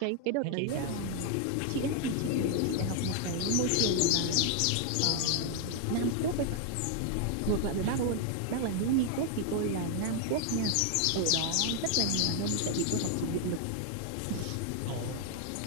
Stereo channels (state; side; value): different; both; correlation 0.00